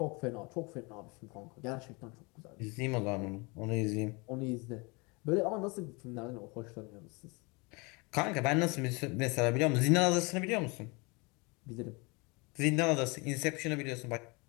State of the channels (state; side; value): quieter; right; 28.4 dB